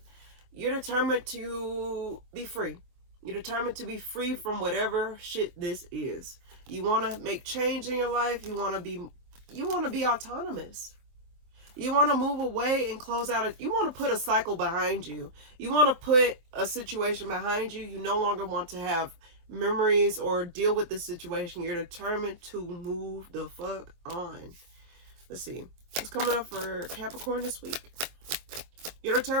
you're determined to be free. You're determined to be free from whatever shit this is. You want to make change in your life. You want to be autonomous. You want to move away and close out. You want to put a cycle behind you. You want to put a situation behind you. You no longer want to have memories or deal with the situation. You're determined to move the fuck on. Let's see. What's coming up for Capricorn this week? You're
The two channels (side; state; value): left; late; 24 ms